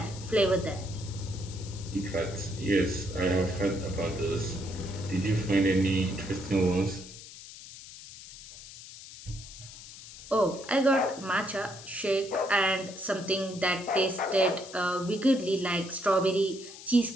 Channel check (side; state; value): left; noise; hiss, 15 dB below the sound